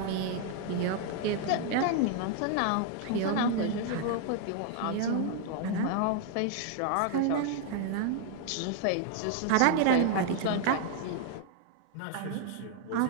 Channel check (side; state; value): both; different; correlation 0.00